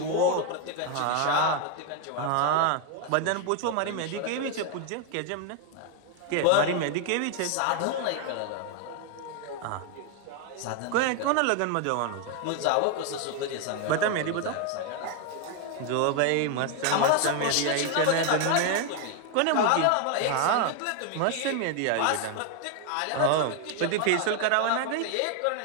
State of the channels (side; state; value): both; different; correlation 0.01